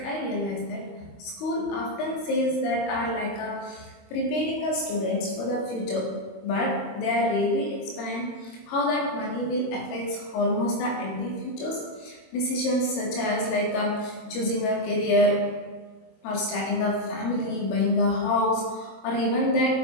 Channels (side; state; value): right; late; 23 ms